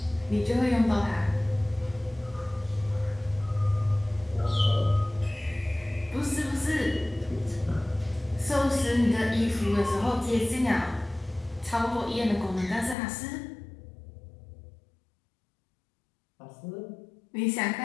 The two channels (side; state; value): right; drops out; at 13.0 s